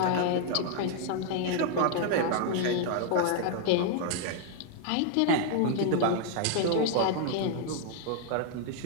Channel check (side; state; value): both; different; correlation 0.00